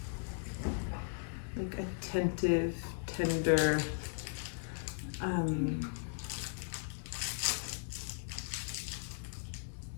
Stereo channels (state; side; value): silent; right; 53 dB below the other